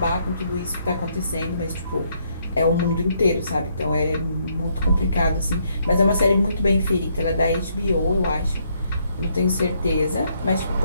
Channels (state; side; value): inverted; both; correlation -0.72